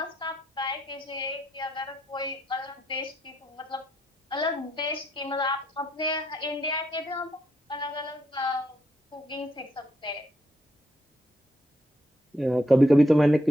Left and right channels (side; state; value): both; normal; correlation 0.77